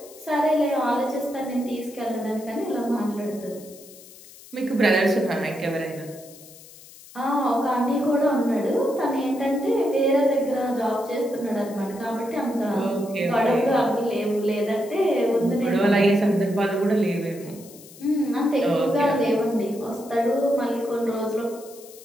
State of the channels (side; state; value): left; noise; hiss, 20 dB below the sound